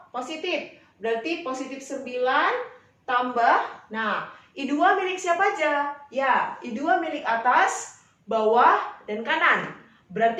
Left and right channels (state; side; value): identical; both; correlation 1.00